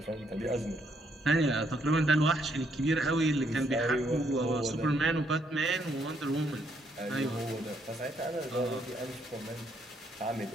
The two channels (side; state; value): both; normal; correlation 0.73